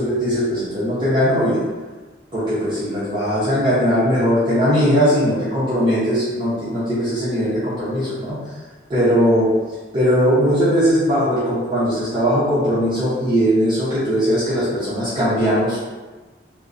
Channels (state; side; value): normal; both; correlation 0.49